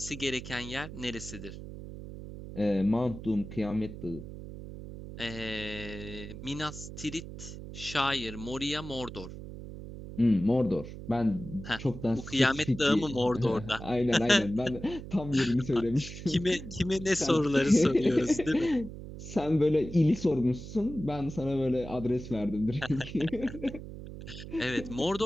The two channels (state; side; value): noise; right; hum, 11 dB below the sound